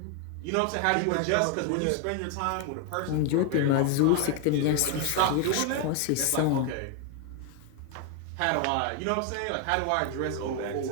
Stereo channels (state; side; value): different; both; correlation 0.01